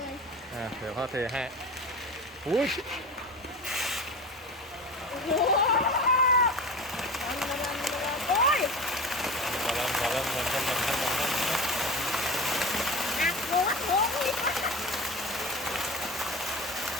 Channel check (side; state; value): both; normal; correlation 0.31